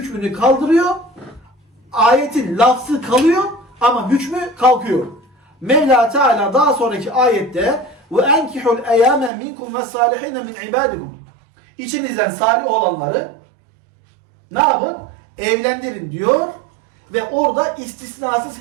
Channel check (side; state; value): left; drops out; at 9.3 s